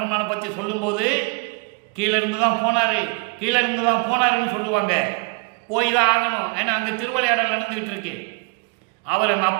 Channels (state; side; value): quieter; left; 31.8 dB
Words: பற்றி சொல்லும்போது கீழே இருந்து தான் போனார், கீழே இருந்து தான் போனாருன்னு சொல்லுவாங்க. போய் தான் ஆகணும். ஏன்னா அங்கே திருவிளையாடல் நடந்துக்கிட்டு இருக்கு. அவர் எங்கள்